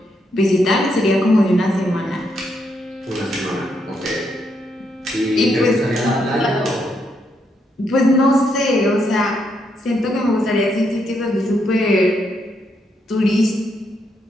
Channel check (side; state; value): both; normal; correlation 0.78